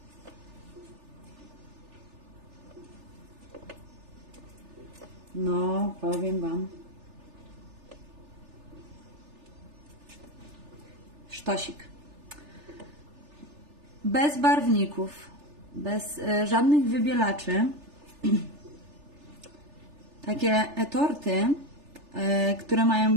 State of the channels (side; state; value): left; late; 3.4 ms